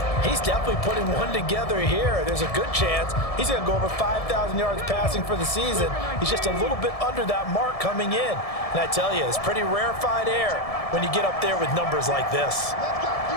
he's definitely putting one together here. There's a good chance he's going to go over 5,000 yards passing for the season. He's just a little bit under that mark coming in. And I tell you, it's pretty rarefied air when you get up there with numbers like this.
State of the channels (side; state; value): right; late; 1.7 ms